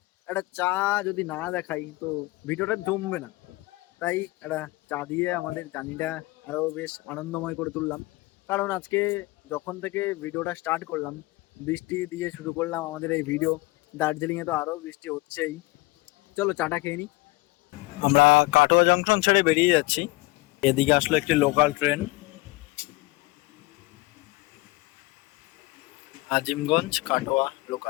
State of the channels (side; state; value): right; quieter; 21.9 dB